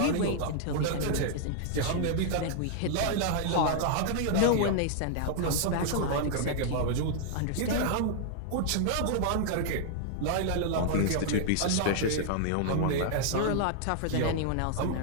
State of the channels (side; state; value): both; different; correlation -0.01